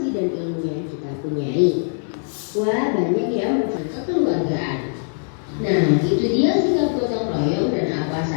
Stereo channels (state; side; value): silent; right; 64 dB below the other